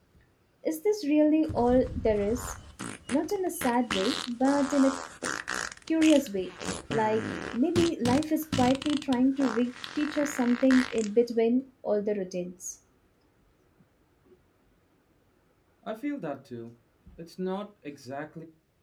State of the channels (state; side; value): identical; both; correlation 1.00